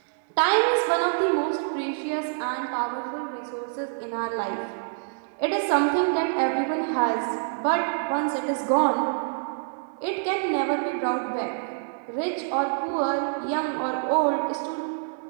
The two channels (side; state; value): left; silent; 61 dB below the other